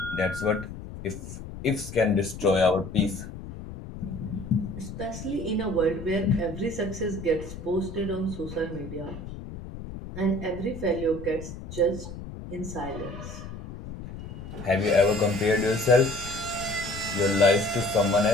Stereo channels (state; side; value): noise; left; rumble, 11 dB below the sound